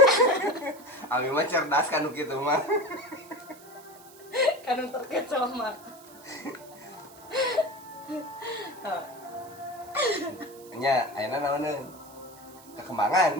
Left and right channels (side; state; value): right; noise; hiss, 22 dB below the sound